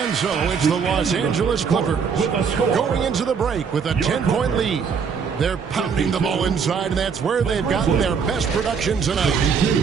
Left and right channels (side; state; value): left; quieter; 6.2 dB